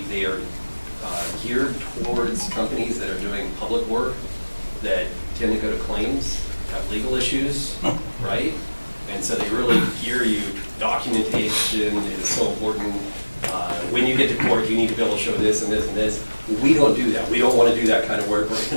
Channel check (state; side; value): inverted; both; correlation -1.00